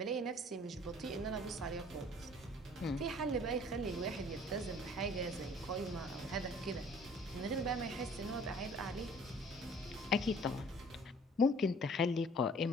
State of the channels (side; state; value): both; normal; correlation 0.53